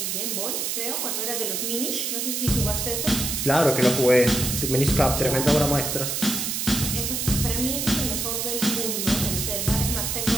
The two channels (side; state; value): right; noise; hiss, 1 dB below the sound